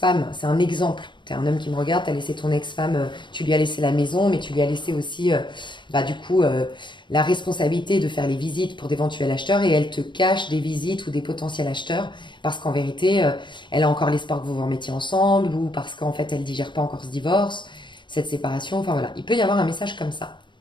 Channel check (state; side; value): late; right; 0.23 ms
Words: c'est un exemple. Tu es un homme qui me regarde, tu as laissé ton ex-femme, tu lui as laissé la maison, mais tu lui as laissé aussi, bah, du coup, la responsabilité de faire les visites pour d'éventuels acheteurs et elle te cache des visites ou des potentiels acheteurs parce qu'en vérité, elle a encore l'espoir que vous vous remettiez ensemble ou parce qu'en fait, elle digère pas encore ce divorce, cette séparation. Enfin voilà, il peut y avoir un message comme ça.